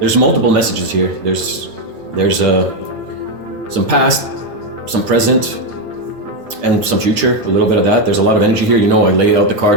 multiple messages here. There's some past, some present, and some future, a little bit of that. There's a lot of energy here. You know, I lay out the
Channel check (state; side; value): late; left; 9.0 ms